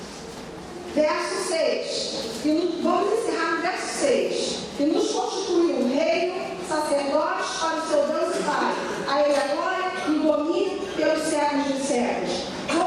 verso 6. Vamos encerrar no verso 6. E nos constituiu reino, sacerdotes para o seu Deus e Pai. A ele a glória e o domínio pelos séculos dos séculos.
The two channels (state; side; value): identical; both; correlation 1.00